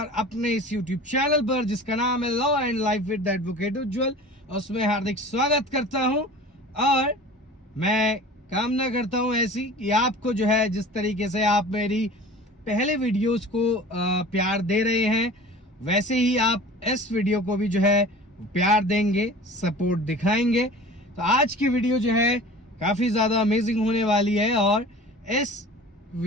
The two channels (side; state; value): both; normal; correlation 0.41